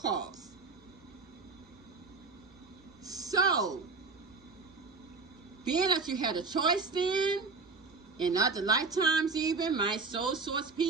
So, being that you had a choice then, in other lifetimes even, my soul source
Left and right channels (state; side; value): quieter; left; 4.3 dB